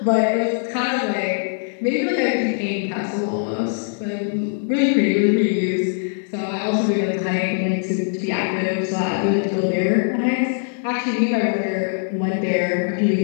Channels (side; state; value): right; silent; digital silence